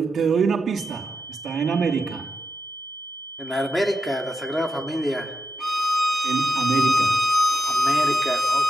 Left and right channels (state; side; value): normal; both; correlation 0.86